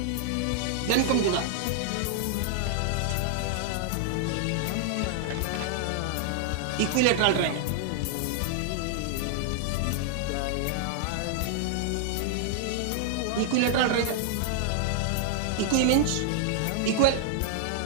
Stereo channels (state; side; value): different; both; correlation -0.01